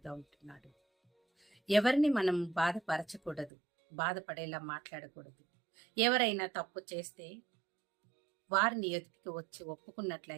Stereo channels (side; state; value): left; drops out; at 3.5 s